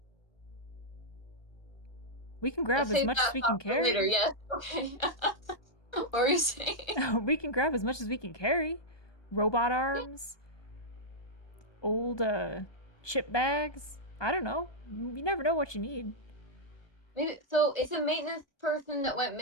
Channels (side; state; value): right; late; 1.2 ms